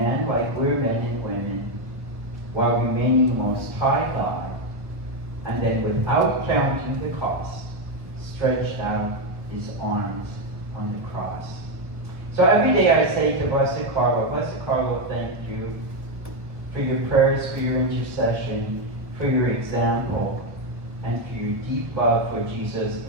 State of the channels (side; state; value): left; late; 1.1 ms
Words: like we're men and women, while remaining Most High God, and then without counting the cost, stretched out His arms on the cross. So every day I say to Blessed Carlo, thank you for your prayers, for your intercession, for your example, and for your deep love for Jesus